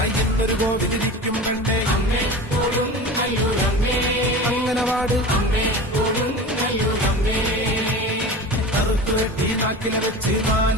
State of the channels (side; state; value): both; normal; correlation 0.32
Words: എന്തൊരു കോവിലിരിക്കും കണ്ടേ അമ്മേ കൊടുങ്ങല്ലൂരമ്മേ അംഗനവാടി അമ്മേ കൊടുങ്ങല്ലൂരമ്മേ കറുത്തു വെട്ടി നാക്കിലെ വെച്ച്